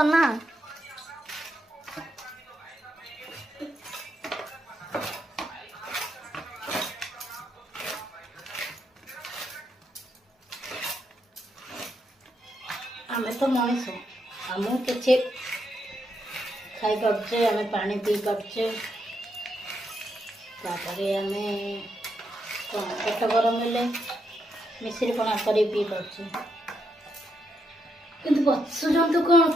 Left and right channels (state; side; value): normal; both; correlation 0.80